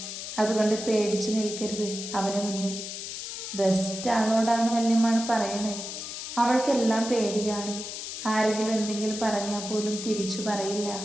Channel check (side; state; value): left; noise; hiss, 7 dB below the sound